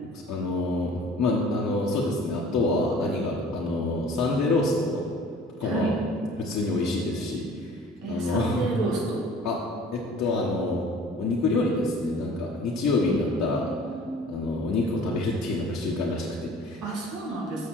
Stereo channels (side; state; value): both; normal; correlation 0.48